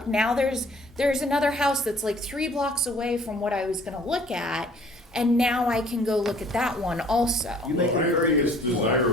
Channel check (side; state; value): both; normal; correlation 0.55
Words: now there's another house that's like 3 blocks away from what I was going to look at." And now I can go look at that one also. You make Well, a I very think it's good point.